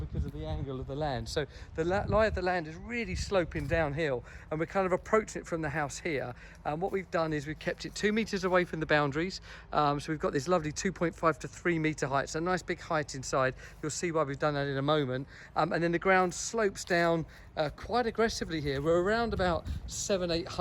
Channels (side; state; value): both; identical; correlation 1.00